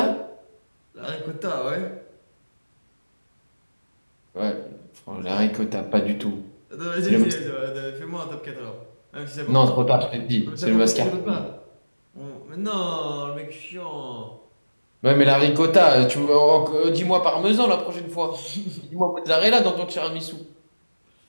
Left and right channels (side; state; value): both; inverted; correlation -1.00